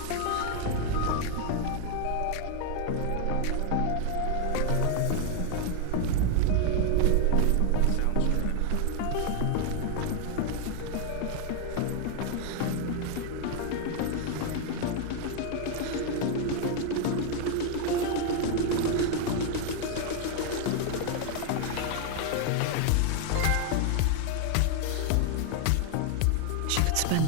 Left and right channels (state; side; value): different; both; correlation 0.00